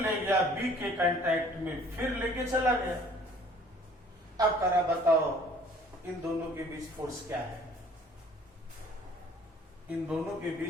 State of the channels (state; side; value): normal; both; correlation 0.54